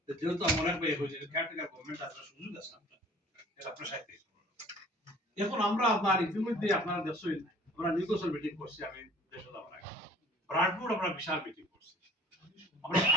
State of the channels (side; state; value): both; normal; correlation 0.50